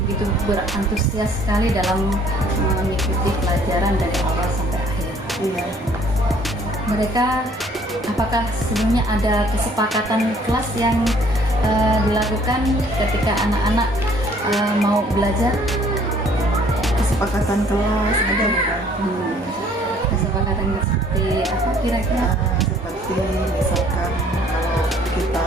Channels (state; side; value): normal; both; correlation 0.59